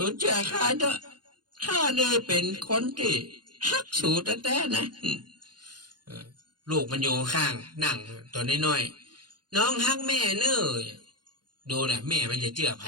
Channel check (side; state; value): left; late; 0.70 ms